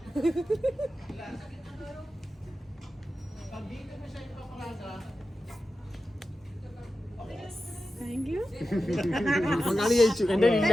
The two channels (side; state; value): both; normal; correlation 0.92